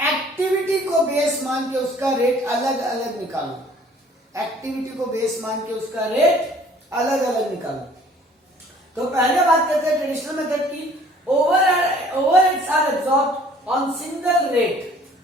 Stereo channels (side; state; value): both; normal; correlation 0.55